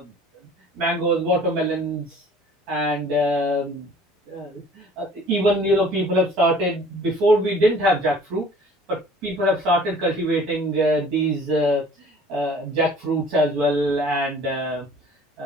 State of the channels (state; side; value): normal; both; correlation 0.50